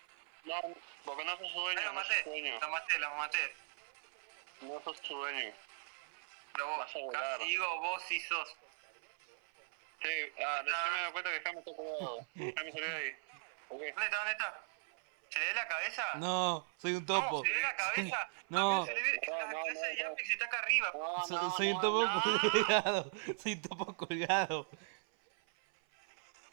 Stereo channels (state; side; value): silent; left; 52 dB below the other